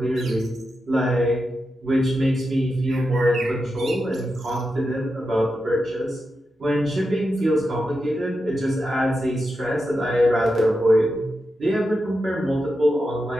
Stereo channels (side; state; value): both; normal; correlation 0.88